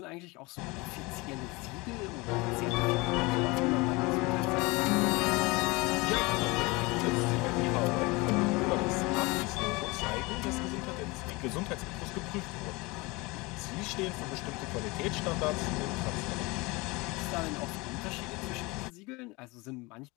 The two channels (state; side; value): quieter; right; 24.5 dB